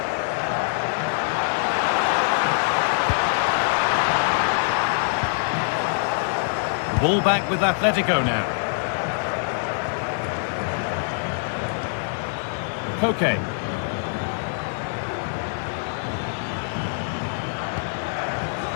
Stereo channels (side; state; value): right; silent; 62 dB below the other